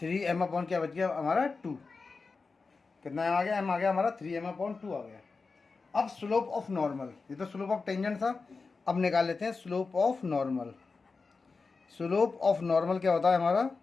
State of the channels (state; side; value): quieter; right; 4.3 dB